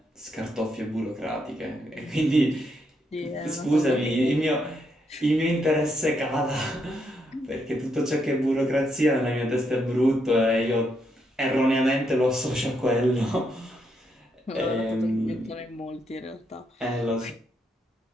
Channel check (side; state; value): both; normal; correlation 0.78